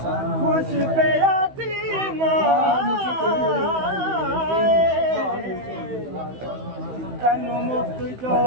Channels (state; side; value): late; left; 15 ms